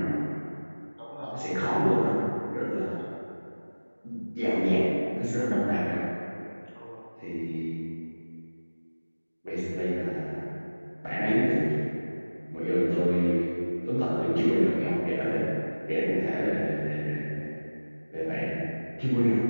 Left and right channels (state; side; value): inverted; both; correlation -1.00